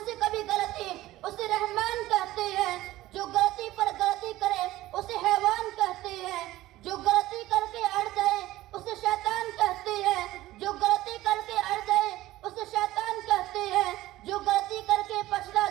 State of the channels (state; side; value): quieter; left; 16.4 dB